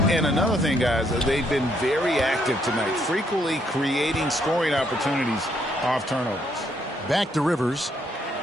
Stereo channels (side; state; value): both; normal; correlation 0.72